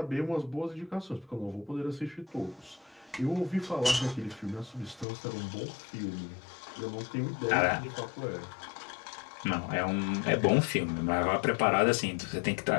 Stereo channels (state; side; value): drops out; right; at 5.1 s